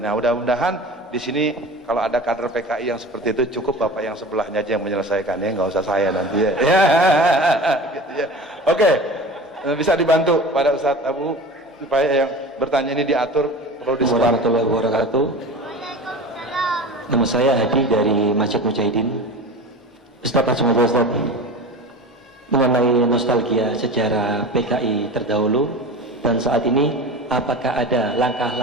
mudah-mudahan di sini kalau ada kader PKI yang seperti itu, cukup bapak yang sebelahnya aja yang menyelesaikannya, nggak usah saya nanti ya. Gitu ya. Oke, bisa dibantu pada Ustadz Abu supaya yang bertanya ini diatur, perlu disebar. Warahmatullahi wabarakatuh. Nama saya Hadi dari Masjid Mujahidin. Ustadz Asmada Ustadz, mengenai nostalgia sejarah PKI terdahulu dan saat ini, apakah ada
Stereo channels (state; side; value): normal; both; correlation 0.33